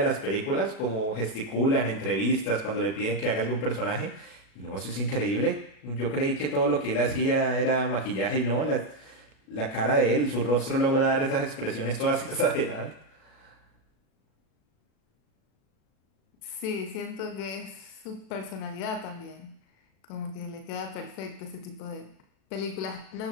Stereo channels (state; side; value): late; right; 37 ms